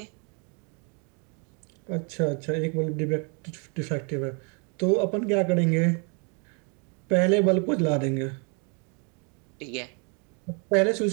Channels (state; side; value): quieter; left; 35.8 dB